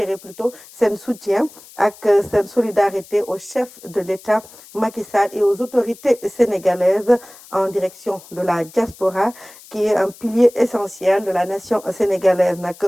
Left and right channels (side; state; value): left; noise; hiss, 21 dB below the sound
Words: plutôt seen soutien ak seen solidarité au chef de l'État Macky Sall et aux autorités sénégalaises en direction de la diaspora qui est un pilier essentiel de la nation sénégalaise nag